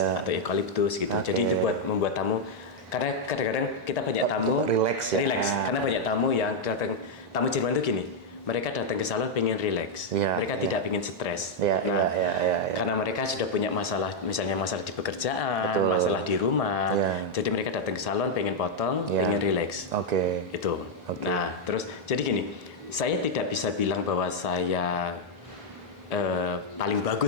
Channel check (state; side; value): normal; both; correlation -0.01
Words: atau eucalyptus gitu. Oke. Jadi itu buat membuat tamu, karena kadang-kadang kita banyak tamu Relax ya. karena banyak tamu yang datang, tamu Jerman itu gini, mereka datang ke salon pengen relax, Ya, mereka tidak pengen stres. Ya, ya. Karena mereka sudah punya masalah, misalnya masalah di pekerjaan, Betul. masalah di rumah, Ya. jadi mereka datang ke salon pengen potong, Ya. pengen relax. Oke. Itu. Oke. Nah, terus jadi gini, saya tidak bisa bilang bahwa saya paling